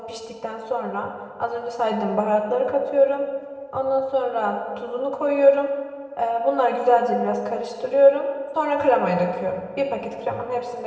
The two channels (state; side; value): identical; both; correlation 1.00